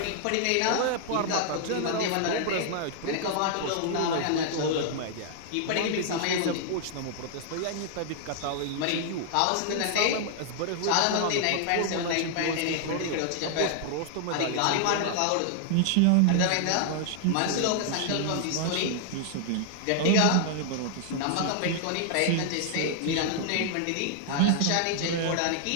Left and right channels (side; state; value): both; different; correlation -0.01